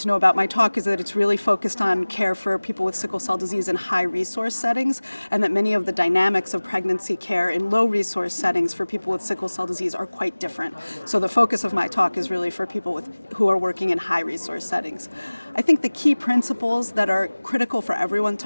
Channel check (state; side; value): inverted; both; correlation -1.00